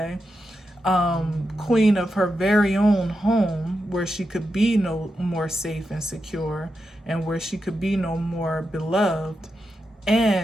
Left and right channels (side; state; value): both; normal; correlation 0.88